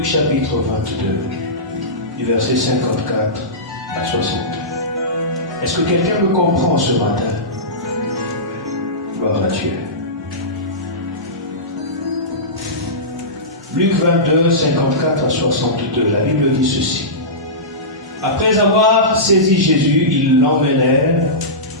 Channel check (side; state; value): both; normal; correlation -0.18